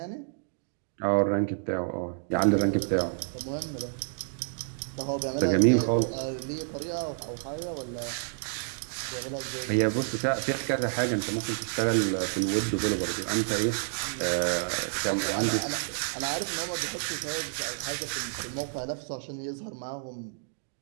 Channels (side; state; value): left; silent; digital silence